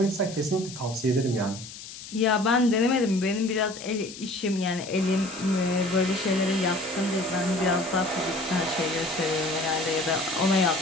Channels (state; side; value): noise; left; hiss, 14 dB below the sound